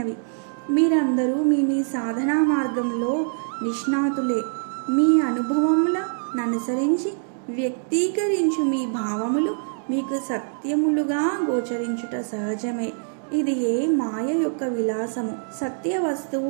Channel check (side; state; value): left; silent; digital silence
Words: మీరందరూ మీ సాధనా మార్గంలో నిష్ణాతులే. మీ అనుభవముల ననుసరించి వ్యక్తీకరించు మీ భావములు మీకు సత్యములుగా గోచరించుట సహజమే. ఇది మాయ యొక్క విలాసము. సత్య